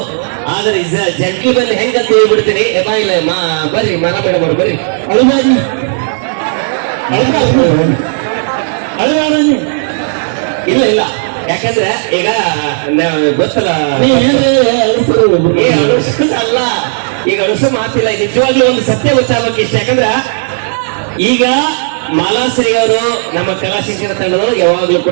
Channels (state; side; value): silent; left; 73 dB below the other